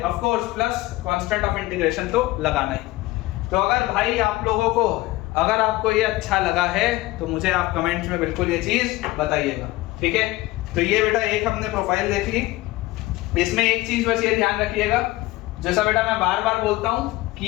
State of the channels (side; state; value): right; quieter; 18.7 dB